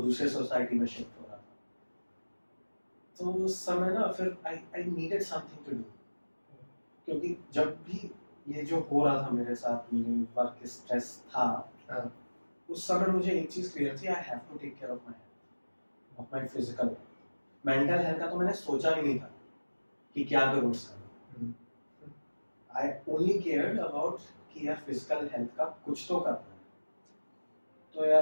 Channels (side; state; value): both; inverted; correlation -1.00